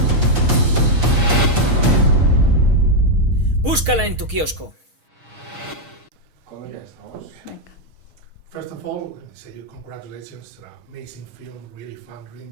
Búscala en tu kiosco. First of all, let me say you congratulations. An amazing film, really fun, really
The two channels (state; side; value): late; left; 6.4 ms